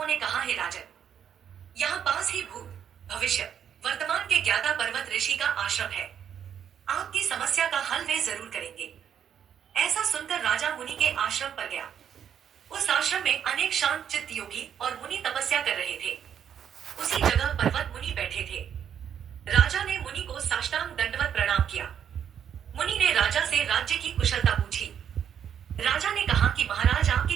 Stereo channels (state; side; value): quieter; left; 8.7 dB